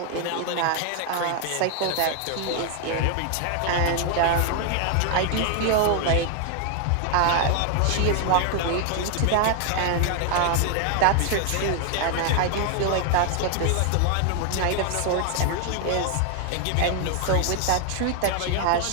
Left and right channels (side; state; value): both; different; correlation 0.00